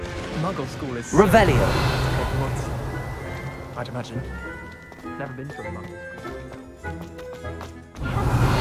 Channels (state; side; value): identical; both; correlation 1.00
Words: Muggle school is Revelio. Hogwarts, I'd imagine. Never been to a Muggle school.